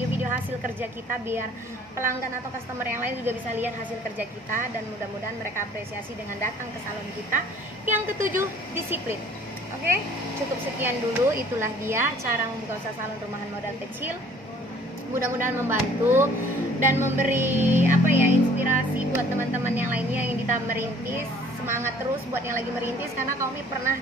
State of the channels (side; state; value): both; normal; correlation 0.54